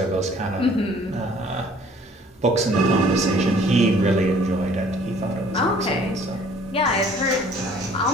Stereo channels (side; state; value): both; normal; correlation 0.55